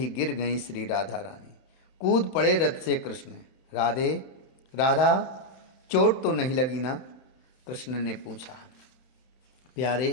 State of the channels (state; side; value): late; right; 31 ms